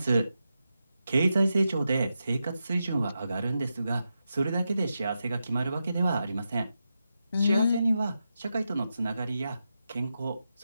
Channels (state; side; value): inverted; both; correlation -0.88